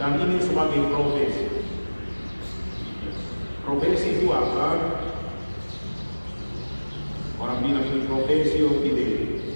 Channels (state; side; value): inverted; both; correlation -1.00